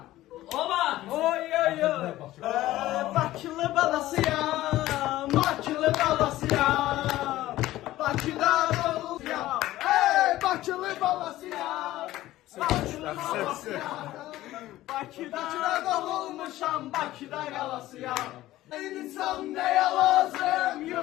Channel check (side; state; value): right; quieter; 15.6 dB